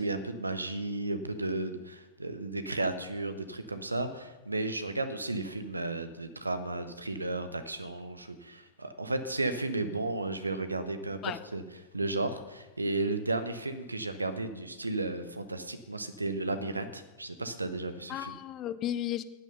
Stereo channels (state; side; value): inverted; both; correlation -0.62